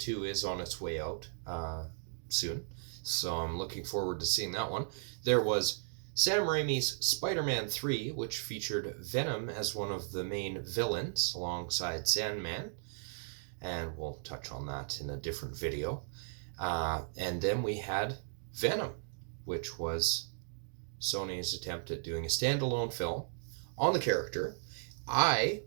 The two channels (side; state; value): left; silent; digital silence